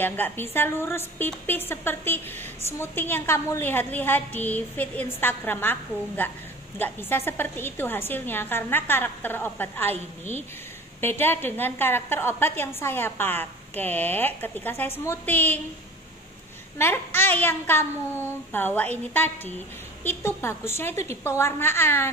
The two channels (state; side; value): normal; both; correlation 0.41